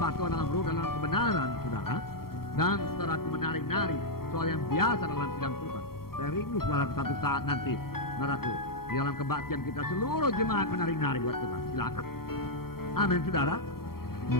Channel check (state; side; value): late; right; 0.94 ms